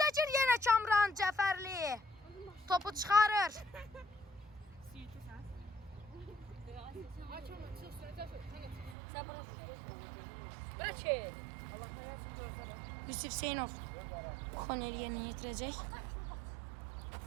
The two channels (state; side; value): drops out; left; at 9.0 s